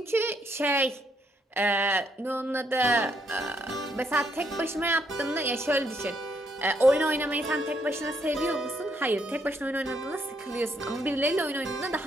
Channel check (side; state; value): both; normal; correlation 0.73